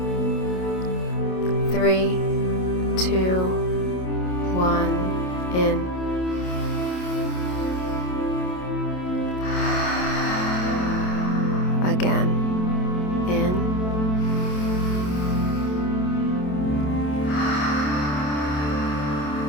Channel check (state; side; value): late; right; 27 ms